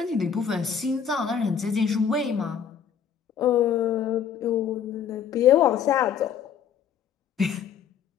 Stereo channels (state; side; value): quieter; right; 7.8 dB